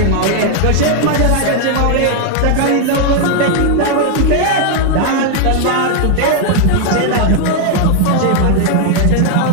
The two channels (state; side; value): different; both; correlation 0.00